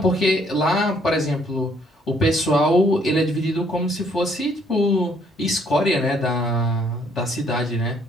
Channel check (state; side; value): normal; both; correlation 0.66